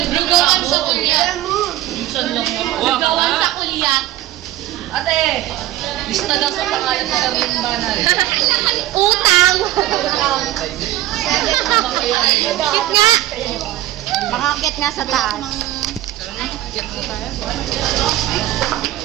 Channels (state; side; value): quieter; left; 14.6 dB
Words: Lugawan sa kuya. Lugawan sa kulyat. Ate, lista daw sa pangalan sa Darling Banal. Utang! Cute nga! Makakit nga sa taas.